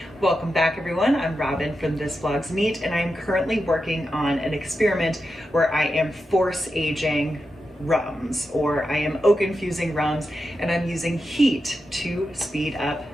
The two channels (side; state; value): both; normal; correlation 0.89